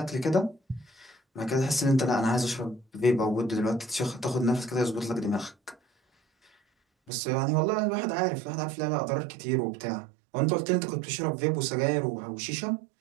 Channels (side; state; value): left; drops out; at 7.1 s